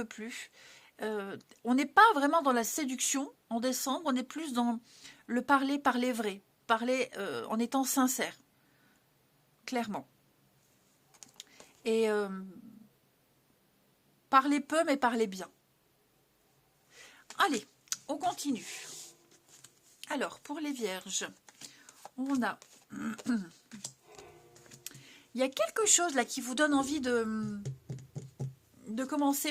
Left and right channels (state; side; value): identical; both; correlation 1.00